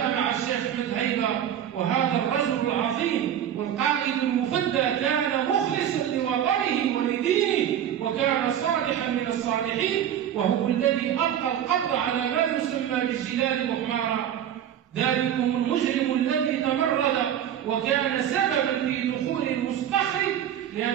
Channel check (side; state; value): left; quieter; 10.1 dB